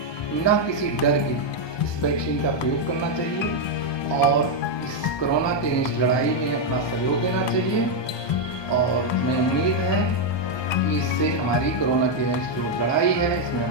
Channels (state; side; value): late; right; 1.2 ms